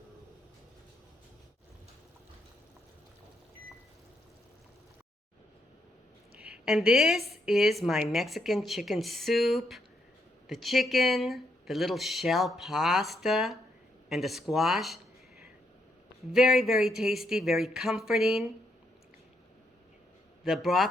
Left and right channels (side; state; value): both; normal; correlation 0.77